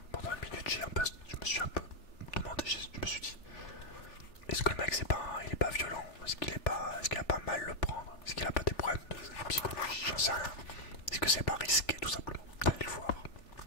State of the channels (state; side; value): late; right; 3.4 ms